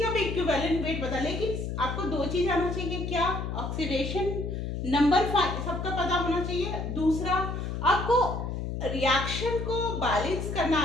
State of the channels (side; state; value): left; noise; hum, 4 dB below the sound